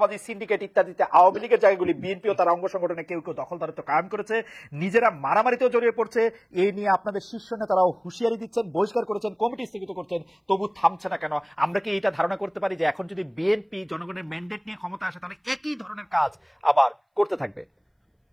সিন্ডিকেট ইত্যাদিতে আওয়ামী লীগের জায়গাগুলি বিএনপিও তার অঙ্গ সংগঠনে কেউ কেউ দখলদারিত্ব কায়েম করেছে, নিজেরা মারামারিতেও জড়িয়ে পড়ছে। এই নিয়ে আপনাদের শীর্ষ নেতারাও হুঁশিয়ারি দিচ্ছেন, বহিষ্কার করেছেন, কমিটি স্থগিত করছেন, তবু থামছে না কেন? আমরা কি এটা ধারণা করতে পারি যে এখন যদি বিএনপি জনগণের ম্যান্ডেট নিয়ে ক্ষমতা আসে তাহলে একই ধরনের কাজ আবার করতে থাকবে,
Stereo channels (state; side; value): identical; both; correlation 1.00